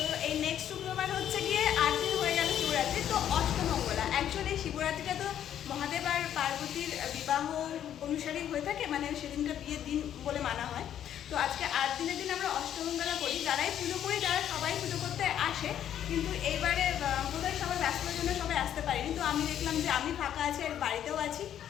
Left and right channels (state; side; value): quieter; right; 10.3 dB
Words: এই নেক্সট শুক্রবার হচ্ছে গিয়ে 8 দিন হয়ে গেল শিবরাত্রি, তো অষ্টমঙ্গলা। অ্যাকচুয়ালি শিবরাত্রিটা তো মহাদেব আর পার্বতীর বিবাহ অনুসারেই হয়ে থাকে, মানে সেদিনটা বিয়ের দিন বলে মানা হয়। তো আজকে 8 দিনের দিন আমরা অষ্টমঙ্গলা করি। যারাই পুজো করি তারা সবাই পুজো করতে আসে, কিন্তু এইবারে বোধহয় সবাই ব্যস্ততার জন্য সবাই আসতে পারিনি। তো আমি দেখলাম যে আমি ফাঁকা আছি আর বাড়িতেও আছি,